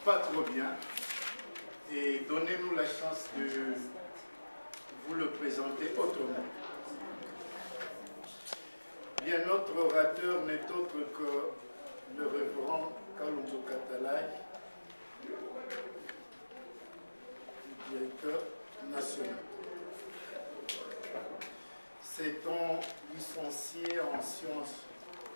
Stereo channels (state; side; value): inverted; both; correlation -1.00